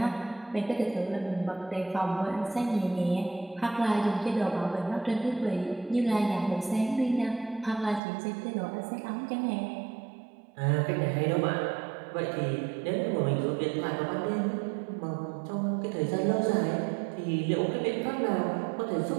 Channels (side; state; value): left; drops out; at 8.0 s